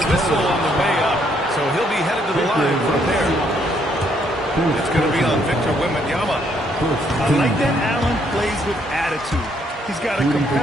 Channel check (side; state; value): both; normal; correlation 0.70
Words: whistle on the way up. So he'll be headed to the line from there. It's going to be on Victor Wembanyama. I like that Allen plays with attitude. He's got a